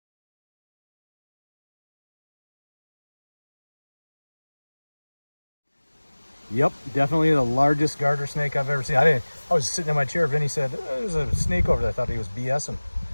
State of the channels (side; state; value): both; inverted; correlation -1.00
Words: Yep, definitely the largest garter snake I've ever seen. I was sitting in my chair. Vinny said, "There's a snake over there." I thought he was BSing.